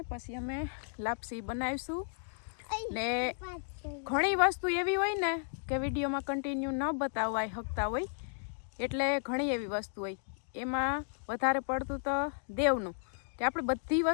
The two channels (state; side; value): silent; right; digital silence